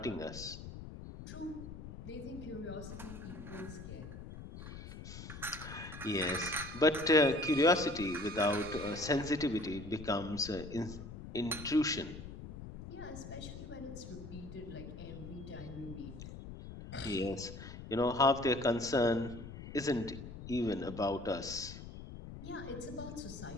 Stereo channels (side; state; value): left; noise; rumble, 11 dB below the sound